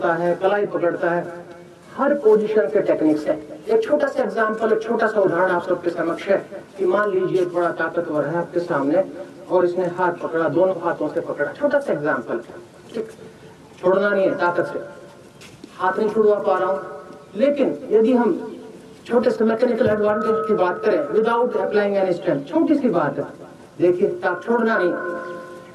है, कलाई पकड़ता है, हर पोजीशन के टेक्निक्स है। एक छोटा सा एग्जांपल, एक छोटा सा उदाहरण आप सबके समक्ष है कि मान लीजिए एक बड़ा ताकतवर है आपके सामने और इसने हाथ पकड़ा, दोनों हाथों से पकड़ा। छोटा सा एग्जांपल, ठीक, छोड़ना नहीं है, ताकत से हाथ नहीं छुड़वा पा रहा हूं। लेकिन यदि हम छोटे से मैकेनिकल एडवांटेज की बात करें विदाउट अप्लाइंग एनी स्ट्रेंथ, छोटी सी बात है, देखिए छोड़ना नहीं,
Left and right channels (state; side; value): identical; both; correlation 1.00